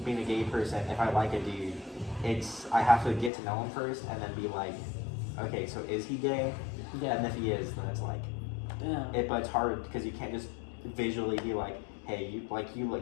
being a gay person, if I like a dude, I have to get to know him first and then be like, okay, so is he gay? Yeah. And if he is, then it's like, but it's hard because you can't just visually be like, hey, you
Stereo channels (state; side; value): drops out; right; at 3.3 s